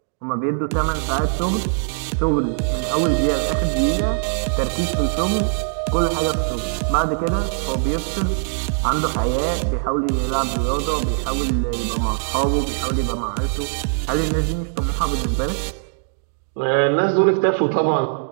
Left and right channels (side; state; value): left; silent; digital silence